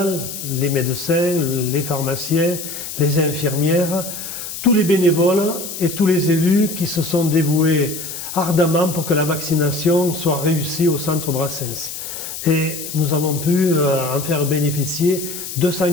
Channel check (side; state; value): left; noise; hiss, 8 dB below the sound